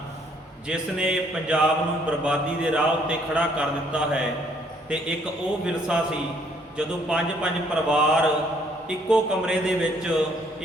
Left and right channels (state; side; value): normal; both; correlation 0.65